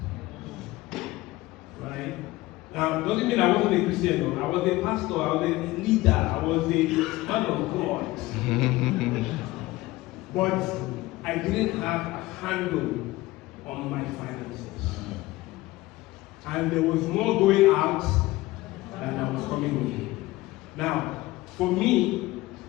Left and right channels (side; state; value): right; quieter; 19.0 dB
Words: Right? Now, doesn't mean I wasn't a Christian, no. I was a pastor, I was a leader, I was a man of God. But I didn't have a handle on my finances. And there was more going out than I was coming in. Now, for me,